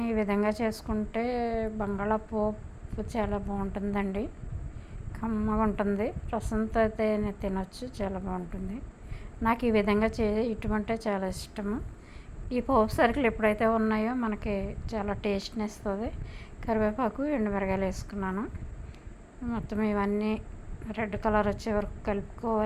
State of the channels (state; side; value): identical; both; correlation 1.00